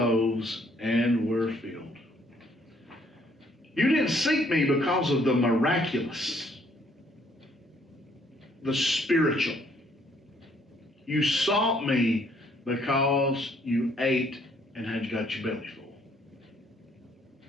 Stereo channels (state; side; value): normal; both; correlation 0.66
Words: and were filled. You didn't seek me because of the miraculous, the spiritual. You sought me because you ate and had got your belly full.